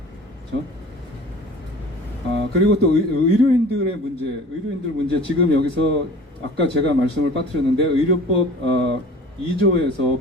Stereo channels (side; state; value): both; normal; correlation 0.44